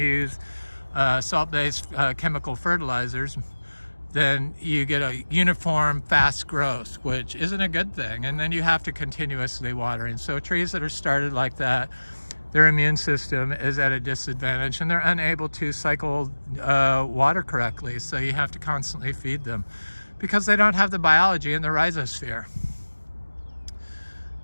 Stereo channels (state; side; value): inverted; both; correlation -1.00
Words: use salt-based chemical fertilizers, then you get a uniform fast growth, which isn't a good thing, and then you have to continuously water. And so trees that are started like that, their immune system is at a disadvantage, and they're unable to cycle water correctly, so you have to constantly feed them because they don't have the biology in the rhizosphere.